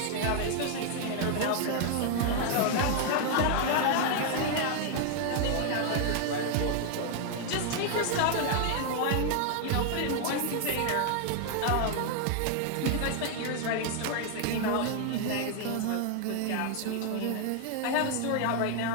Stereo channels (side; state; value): both; different; correlation 0.00